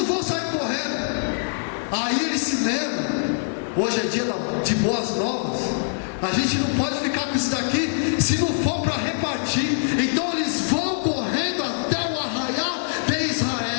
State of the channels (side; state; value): right; silent; digital silence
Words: vão sair correndo. Aí eles se lembram, hoje é dia de boas novas, a gente não pode ficar com isso daqui se não for para repartir. Então eles vão correndo até o arraial de